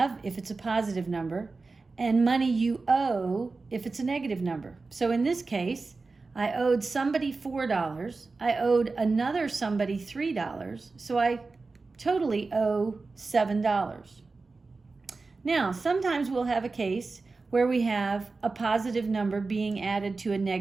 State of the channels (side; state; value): left; quieter; 3.9 dB